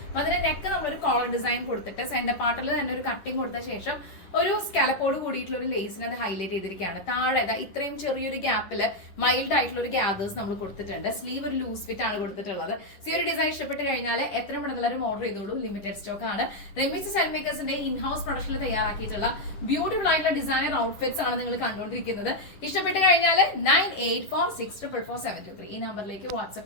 അപ്പൊ അതിന്റെ നെക്ക് നമ്മളൊരു കോളർ ഡിസൈൻ കൊടുത്തിട്ട് സെന്റർ പാർട്ടിൽ തന്നെ ഒരു കട്ടിങ് കൊടുത്ത ശേഷം ഒരു സ്കാലപ്പോട് കൂടിയിട്ടുള്ള ഒരു ലേസിനെ അത് ഹൈലൈറ്റ് ചെയ്തിരിക്കുകയാണ്. താഴെ ഇത്രയും ചെറിയൊരു ഗ്യാപ്പിൽ മൈൽഡ് ആയിട്ടുള്ള ഒരു ഗ്യാദേഴ്സ് നമ്മൾ കൊടുത്തിട്ടുണ്ട്. സ്ലീവ് ഒരു ലൂസ് ഫിറ്റ് ആണ് കൊടുത്തിട്ടുള്ളത്. ഈ ഒരു ഡിസൈൻ ഇഷ്ടപ്പെട്ട് കഴിഞ്ഞാൽ എത്ര പെട്ടെന്ന് ഓർഡർ ചെയ്തോളൂ. ലിമിറ്റഡ് സ്റ്റോക്ക് ആണ്. റെമീസ് സ്റ്റൈൽ മേക്കേഴ്സിന്റെ ഇൻഹൗസ് പ്രൊഡക്ഷനിൽ തയ്യാറാക്കിയിട്ടുള്ള ബ്യൂട്ടിഫുൾ ആയിട്ടുള്ള ഡിസൈനർ ഔട്ട്ഫിറ്റ്സ് ആണ് നിങ്ങൾ കണ്ടുകൊണ്ടിരിക്കുന്നത്. ഇഷ്ടപ്പെട്ട് കഴിഞ്ഞാൽ 9846444723 ഈ നമ്പറിലേക്ക്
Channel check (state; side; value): late; right; 10 ms